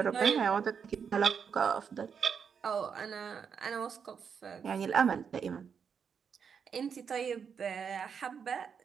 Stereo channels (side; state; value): left; quieter; 6.7 dB